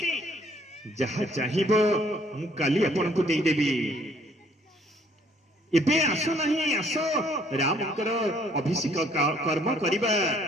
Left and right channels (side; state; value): both; normal; correlation 0.62